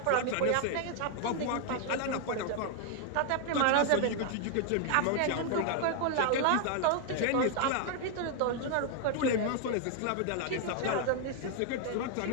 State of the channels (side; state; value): both; different; correlation 0.00